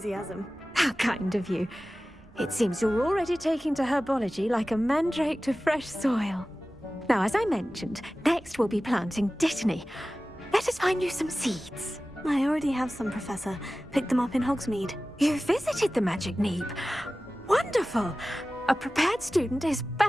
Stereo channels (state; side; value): normal; both; correlation 0.96